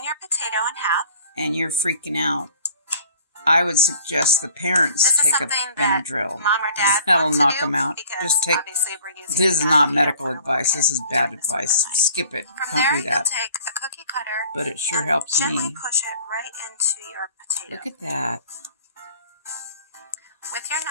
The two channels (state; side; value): inverted; both; correlation -0.51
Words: your potato in half, and you're freaking out, I would suggest the parents take a Benadryl. Mom or dad That'll knock them out. Just take. This is not medical advice. This is bad advice. Skip it. Don't do that. Take a cookie cutter, but it sure helps gently me. Push it right into your potato. Look at that. With your